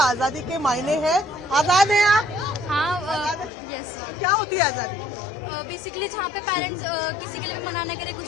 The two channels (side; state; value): right; drops out; at 3.5 s